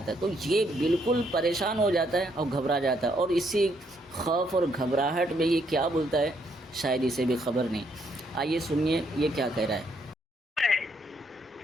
ہے۔ تو یہ بالکل پریشان ہو جاتا ہے اور گھبرا جاتا ہے، اور اسی خوف اور گھبراہٹ میں یہ کیا بولتا ہے شاید اسے بھی خبر نہیں۔ آئیے سنیے یہ کیا کہہ رہا ہے۔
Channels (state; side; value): normal; both; correlation 0.73